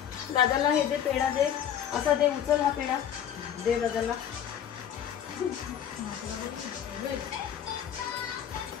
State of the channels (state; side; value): quieter; right; 9.5 dB